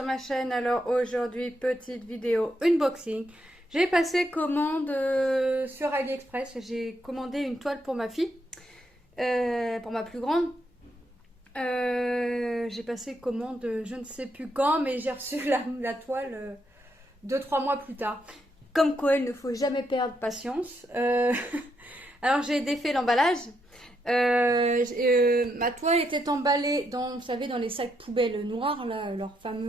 ma chaîne. Alors aujourd'hui, petite vidéo unboxing. J'ai passé commande sur AliExpress. J'ai commandé une toile pour ma fille, pour ma plus grande. J'ai passé commande je ne sais plus quand, mais j'ai reçu la toile 2-3 mois plus tard. Comme quoi, il ne faut jamais perdre patience. Alors j'ai défait l'emballage. Ma toile était emballée dans, vous savez, dans les sacs poubelles noirs, là, leur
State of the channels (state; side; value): normal; both; correlation 0.78